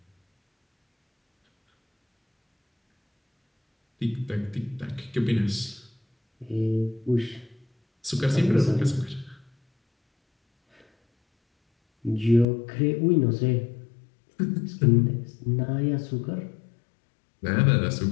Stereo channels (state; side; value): drops out; right; at 12.5 s